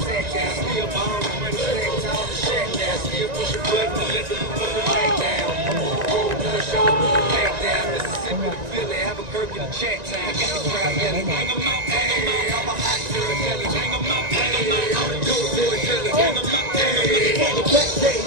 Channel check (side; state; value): left; late; 1.9 ms